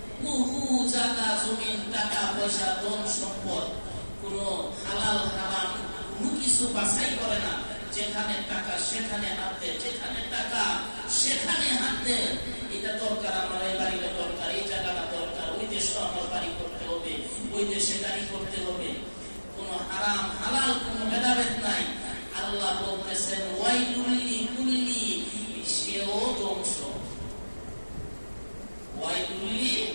বহু জায়গা জমিন, টাকা পয়সা, ধন সম্পদ, কোন হালাল হারাম কোনো কিছু বাছাই করে না। যেখানে টাকা সেখানে হাত দেয়, যেখানে টাকা সেখানে হাত দেয়। এটা দরকার, আমার এই বাড়িটা দরকার, এই জায়গাটা দরকার, ওই দেশে আমার বাড়ি করতে হবে, ওই দেশে গাড়ি করতে হবে। কোন হারাম হালাল কোন ভেদাভেদ নাই। আল্লাহ বলতেছেন ওয়াইলুল্লি কুল্লি, সেও ধ্বংস। ওয়াইলুল্লি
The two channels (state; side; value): inverted; both; correlation -1.00